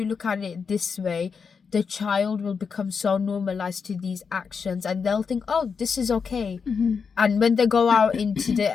look at it this way, the child will become so normalized to these actions, and they'll think, oh, this is okay. And when they go out into the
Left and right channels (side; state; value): right; quieter; 5.8 dB